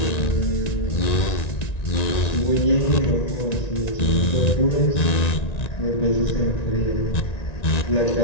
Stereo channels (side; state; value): right; late; 1.9 ms